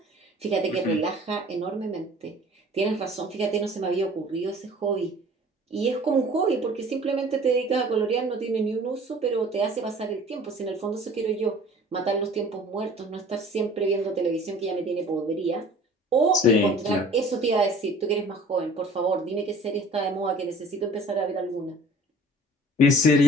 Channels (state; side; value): normal; both; correlation 0.48